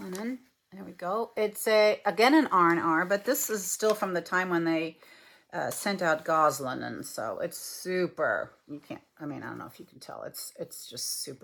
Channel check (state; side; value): identical; both; correlation 1.00